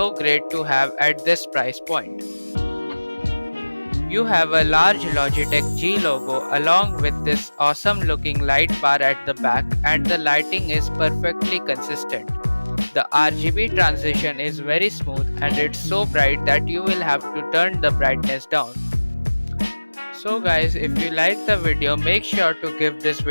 great to have at this price point. You have a large Logitech G logo along with this awesome looking light bar at the back, and the lighting is perfectly consistent. The RGB transition is very smooth and it's so bright that you will have to turn the brightness down. So guys, if you like the video, make sure to give this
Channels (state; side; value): inverted; both; correlation -1.00